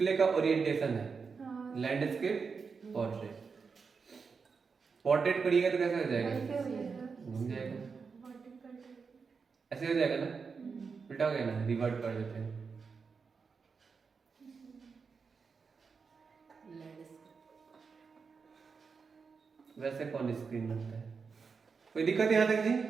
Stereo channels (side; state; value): left; quieter; 5.3 dB